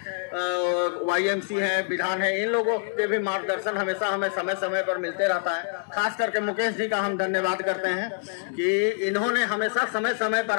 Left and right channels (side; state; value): right; silent; digital silence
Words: YMC है, विधान है, इन लोगों के भी मार्गदर्शन हमेशा हमें समय समय पर मिलते रहता है। खास करके मुकेश जी का हम धन्यवाद करते हैं कि इन्होंने हमेशा समय समय पर